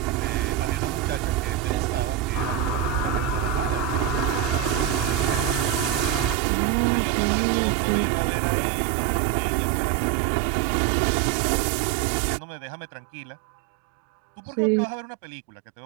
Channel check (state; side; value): drops out; left; at 6.4 s